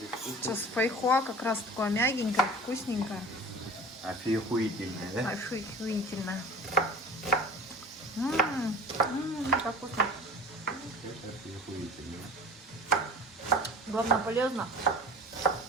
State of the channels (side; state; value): both; normal; correlation 0.39